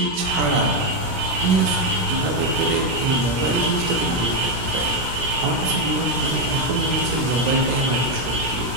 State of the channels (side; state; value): left; late; 17 ms